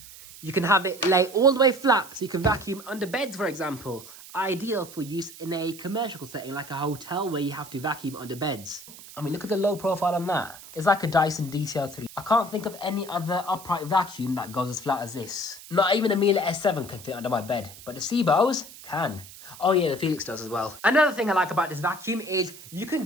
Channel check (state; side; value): noise; right; hiss, 17 dB below the sound